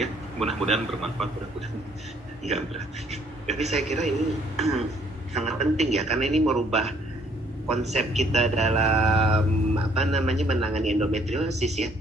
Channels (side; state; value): both; normal; correlation 0.63